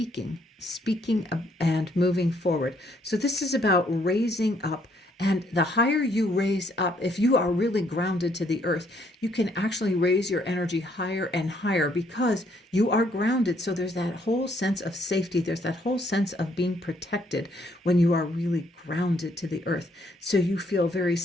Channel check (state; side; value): normal; both; correlation 0.68